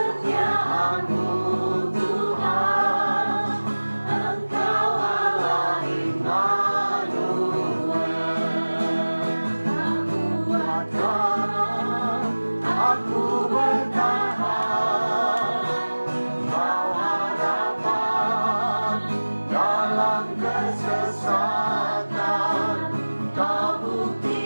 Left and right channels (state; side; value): inverted; both; correlation -1.00